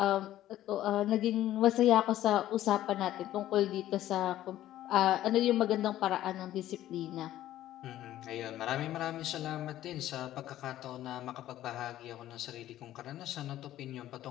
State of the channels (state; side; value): quieter; right; 13.4 dB